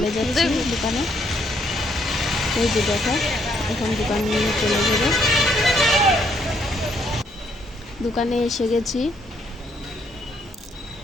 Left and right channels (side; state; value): both; normal; correlation 0.71